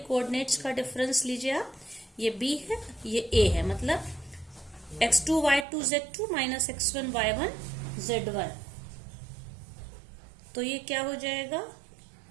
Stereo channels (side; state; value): left; drops out; at 5.7 s